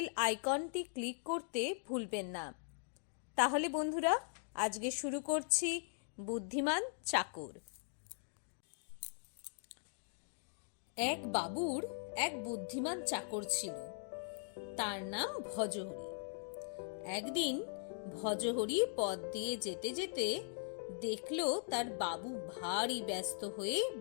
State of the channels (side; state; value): right; silent; digital silence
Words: আইকনটি ক্লিক করতে ভুলবেন না। তাহলে বন্ধুরা, আজকে শুরু করছি বুদ্ধিমান চাকর। এক বাবুর এক বুদ্ধিমান চাকর ছিল, তার নাম ভজহরি। একদিন ভজহরি পথ দিয়ে যেতে যেতে দেখলো তার বাবু ভারী ব্যস্ত হয়ে